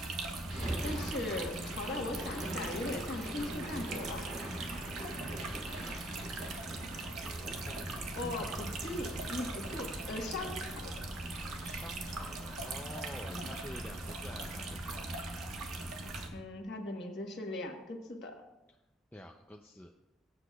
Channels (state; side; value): normal; both; correlation 0.61